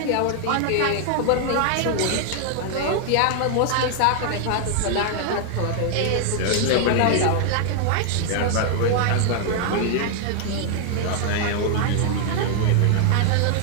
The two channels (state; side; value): different; both; correlation 0.00